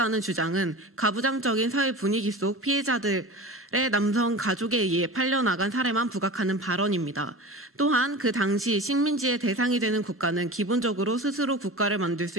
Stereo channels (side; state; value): both; normal; correlation 0.33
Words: 주장은 가부장적인 사회 분위기 속 피해자들의 남성 가족에 의해 팔려나간 사례만 부각하는 발언입니다. 또한 그 당시 식민지의 대상이 되는 국가는 기본적으로 스스로 국가를 만들